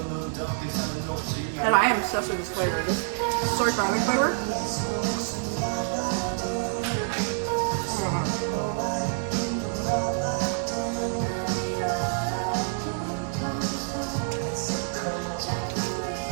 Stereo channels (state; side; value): silent; left; digital silence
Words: And I am obsessed with this flavor. This soy garlic flavor.